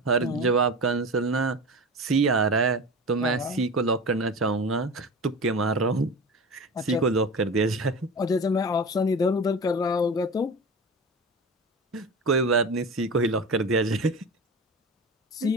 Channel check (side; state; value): both; normal; correlation 0.30